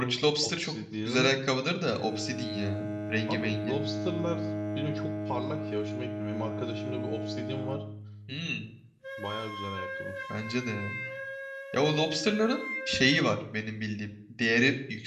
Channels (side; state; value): both; identical; correlation 1.00